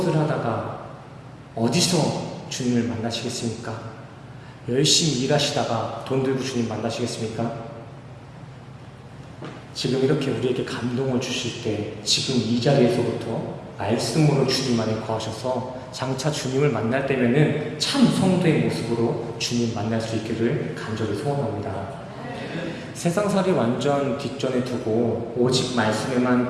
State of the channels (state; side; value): identical; both; correlation 1.00